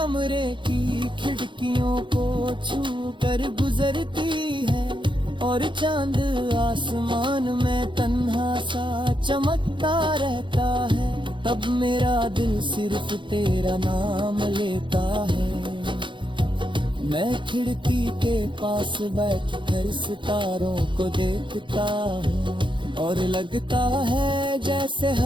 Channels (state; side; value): late; left; 0.23 ms